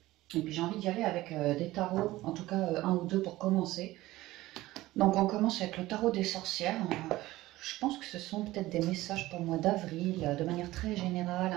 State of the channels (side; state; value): left; quieter; 17.3 dB